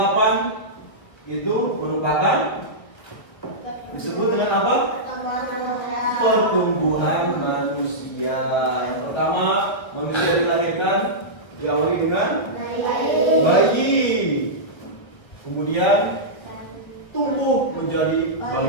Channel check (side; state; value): right; late; 1.6 ms